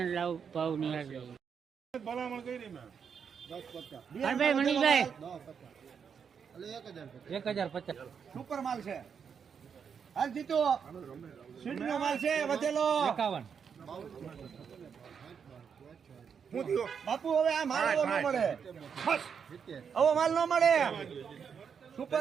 લાવ ભાવ નિહાળ ભલામણ કરી મેં 10, 50 મનીષભાઈ 1050 સુપર માલ છે. હાલ જીતો સીટનો માલ છે. વધેલો 51. બાપુ હવે આ માલ એવો ન મળે. આવો માલ ન મળે.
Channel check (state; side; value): quieter; left; 6.9 dB